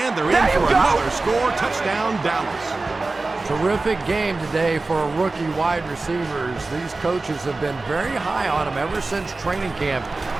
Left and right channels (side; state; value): left; quieter; 3.5 dB